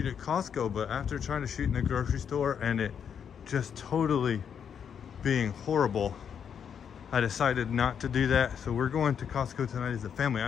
at Costco, but after trying to shoot in the grocery store and it just totally being horrible, I decided not to do that. So we're going to Costco tonight as a family.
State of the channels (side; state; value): right; quieter; 7.7 dB